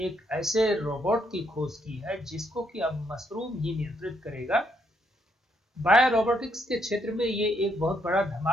ऐसे रोबोट की खोज की है जिसको कि अब मशरूम ही नियंत्रित करेगा। बायो रोबोटिक्स के क्षेत्र में ये एक बहुत बड़ा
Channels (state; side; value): normal; both; correlation 0.74